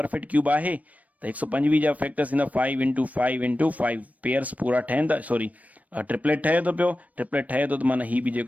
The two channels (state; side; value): late; left; 0.071 ms